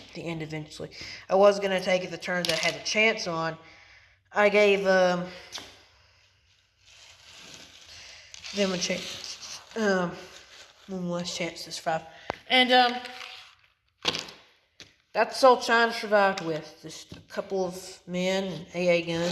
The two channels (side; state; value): both; identical; correlation 1.00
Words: the end eventually. I was going to take it the turn that I had a chance on. I gave them a chance. One last chance to survive. And that's all China survived with. Just a couple of men and AA